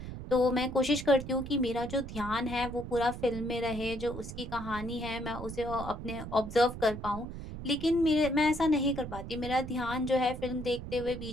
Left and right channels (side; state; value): right; noise; rumble, 9 dB below the sound